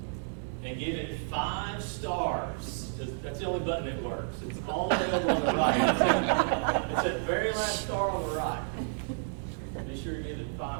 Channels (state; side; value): silent; left; digital silence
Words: and give it 5 stars. That's the only button that works. It's all the way over on the right. It's that very last star on the right. Be sure to give it